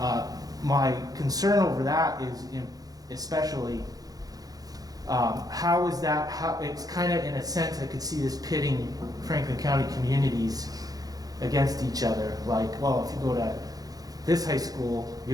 my concern over that is especially how is that, it's kind of in a sense I could see this pitting Franklin County communities against each other. Like, well, if you go to this high school, you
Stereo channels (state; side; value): late; left; 0.18 ms